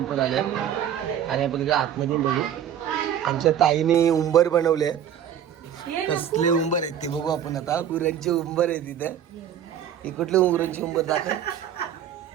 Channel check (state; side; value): quieter; left; 9.5 dB